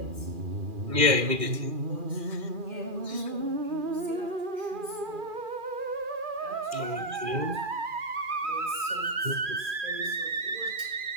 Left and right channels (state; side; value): late; left; 2.4 ms